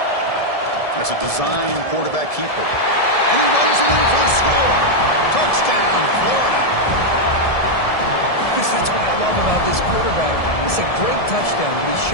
That's a design quarterback keeper. And he runs it in for the score. Touchdown, Florida. Chris, that's what I love about this quarterback. It's a great touchdown, but he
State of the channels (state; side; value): late; right; 1.7 ms